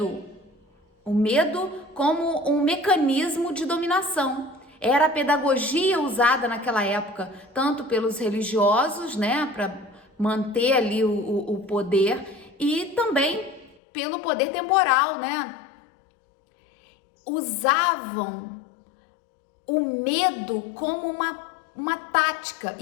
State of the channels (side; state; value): right; drops out; at 13.8 s